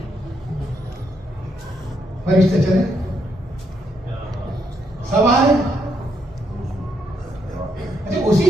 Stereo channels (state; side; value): normal; both; correlation 0.76